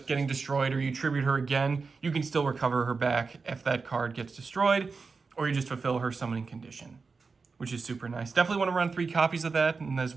getting destroyed or you tribute her again, you can still recover her back if that card gets destroyed, or you just fulfill her summoning condition, which is super nice. Definitely want to run 3 copies of that, and as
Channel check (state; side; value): quieter; left; 4.6 dB